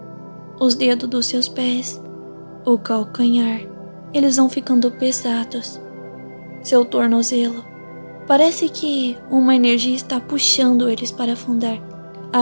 Os dedos dos seus pés, o calcanhar, eles vão ficando pesados. Seu tornozelo, parece que uma energia está puxando eles para afundar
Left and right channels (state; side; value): inverted; both; correlation -1.00